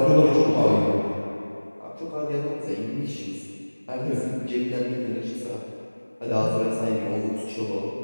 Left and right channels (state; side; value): inverted; both; correlation -1.00